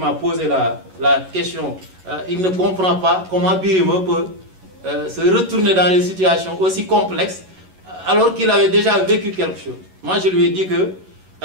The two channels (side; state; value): left; late; 11 ms